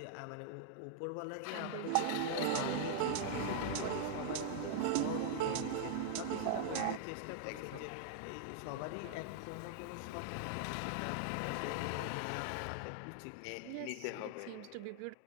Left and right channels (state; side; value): different; both; correlation -0.01